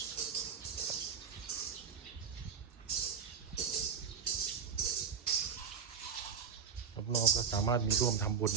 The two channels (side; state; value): left; quieter; 6.6 dB